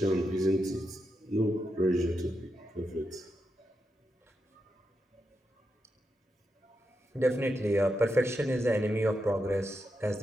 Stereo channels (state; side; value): normal; both; correlation 0.85